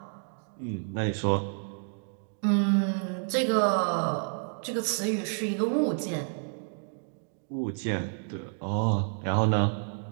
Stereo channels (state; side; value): silent; left; 58 dB below the other